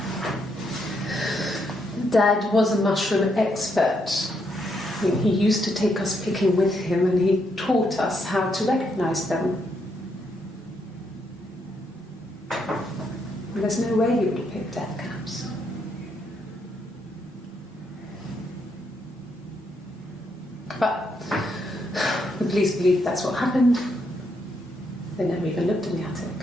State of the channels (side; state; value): both; normal; correlation 0.77